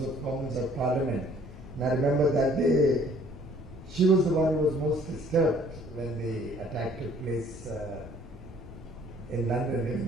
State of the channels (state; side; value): noise; left; rumble, 16 dB below the sound